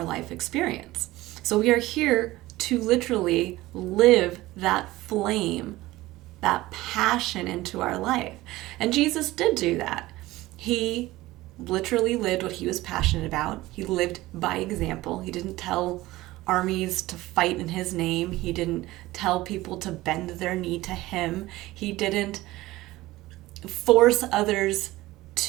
life experience. So we are here to literally live that flame, that passion into our life. And Jesus did do that. He literally lived what he was passionate about. He lived by example. He didn't tell armies to fight in his name. He didn't tell people to bend their knee to him. He didn't force others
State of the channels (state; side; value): quieter; left; 18.0 dB